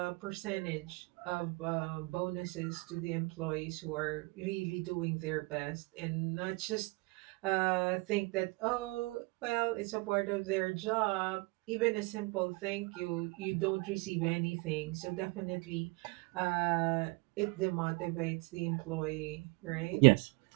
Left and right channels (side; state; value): left; quieter; 27.0 dB